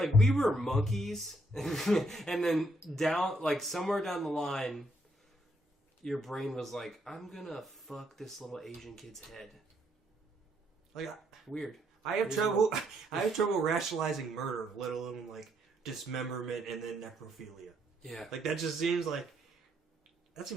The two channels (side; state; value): both; normal; correlation 0.73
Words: we were monkeys, and then down, like somewhere down the line, your brain was like, "I'm gonna fuck this little Asian kid's head." Like, Weird. I have trouble. I have trouble rationalizing murder, let alone like dismemberment and then necrophilia. Yeah. Like that just seems like that